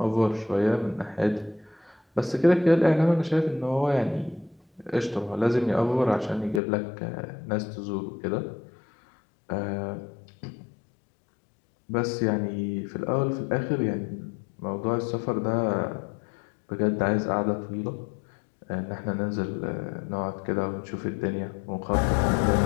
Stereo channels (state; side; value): drops out; right; at 6.6 s